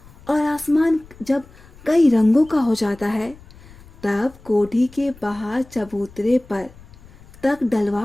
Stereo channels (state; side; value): noise; left; rumble, 22 dB below the sound